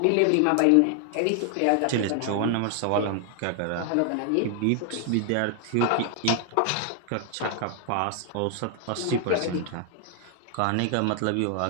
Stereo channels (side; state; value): both; different; correlation 0.00